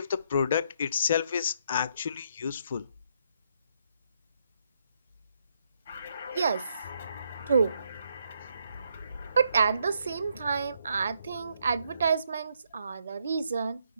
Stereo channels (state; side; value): inverted; both; correlation -0.75